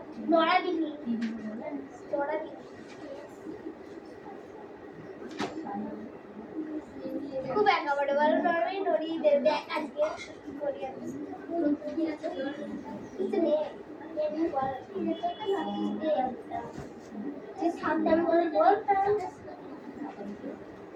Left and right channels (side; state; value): both; identical; correlation 1.00